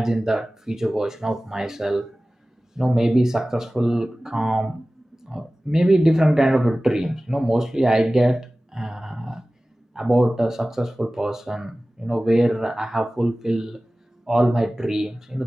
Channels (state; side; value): normal; both; correlation 0.97